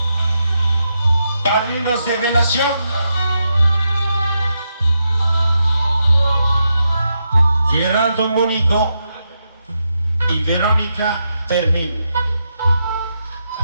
Padrinos de velación. Gerardo Mónico y Verónica Fermín.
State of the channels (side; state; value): both; inverted; correlation -0.84